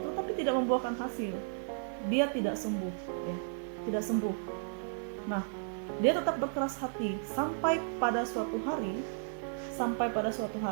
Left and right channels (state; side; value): silent; left; 55 dB below the other